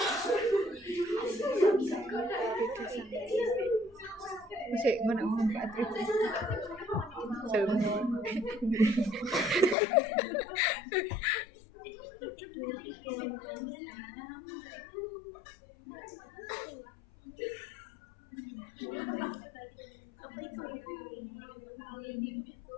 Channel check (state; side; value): drops out; right; at 9.8 s